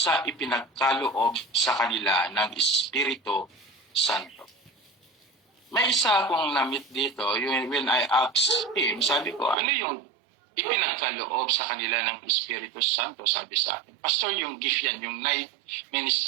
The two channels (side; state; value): left; drops out; at 9.6 s